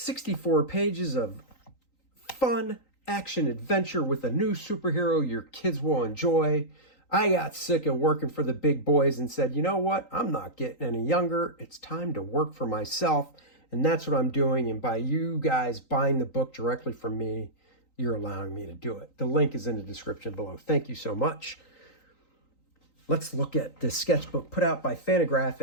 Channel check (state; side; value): late; right; 3.9 ms